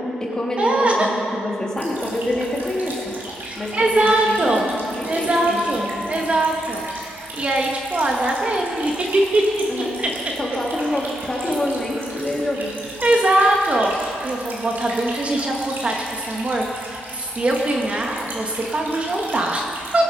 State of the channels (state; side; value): normal; both; correlation 0.82